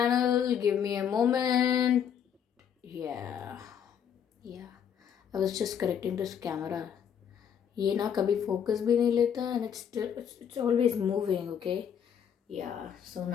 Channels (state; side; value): quieter; right; 8.4 dB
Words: Give me a moment. Yeah, yeah. I was just correcting this camera. ये ना कभी focus भी नहीं लेता and it's always moving. Okay. Yeah. So